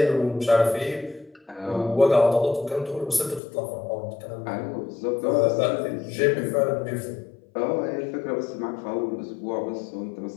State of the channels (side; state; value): right; drops out; at 3.4 s